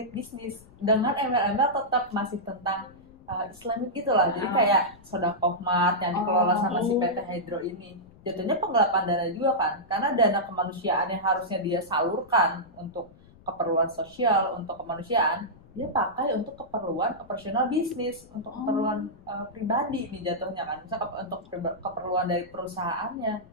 bisnis dengan embel-embel tetap masih tentang Islamic gitu lah. Jadi kayak Sodakoh Mart yang dikelola sama si PT Hydro ini. Jatuhnya penggelapan dana juga kan. Karena dana kemanusiaan yang harusnya dia salurkan untuk keperluan sosial, untuk kemanusiaan, dia pakai untuk keperluan operasional bisnis, untuk keperluan pribadi nih jatuhnya kan. Bisa untuk keperluan dari perusahaannya,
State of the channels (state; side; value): noise; left; rumble, 25 dB below the sound